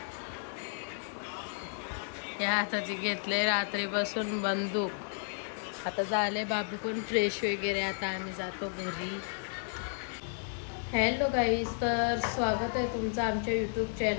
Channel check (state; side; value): silent; right; digital silence